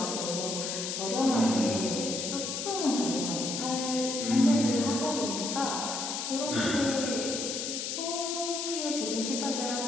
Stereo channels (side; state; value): left; noise; hiss, 3 dB below the sound